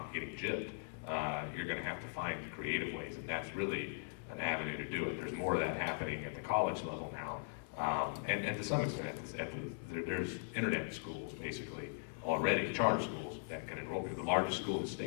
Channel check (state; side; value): silent; right; digital silence